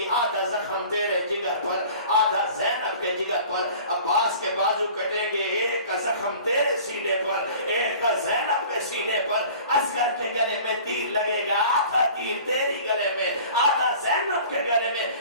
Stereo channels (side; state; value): both; inverted; correlation -0.45